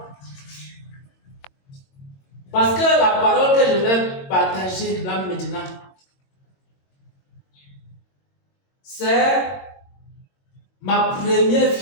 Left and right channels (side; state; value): right; late; 22 ms